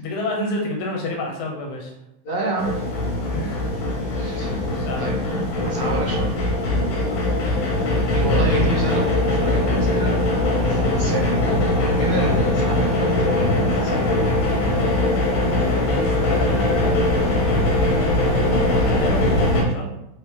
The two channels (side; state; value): right; late; 16 ms